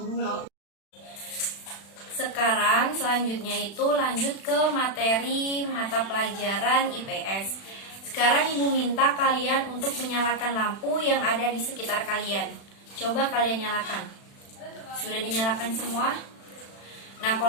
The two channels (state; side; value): late; right; 36 ms